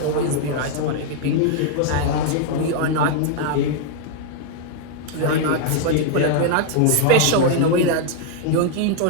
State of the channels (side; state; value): both; different; correlation 0.00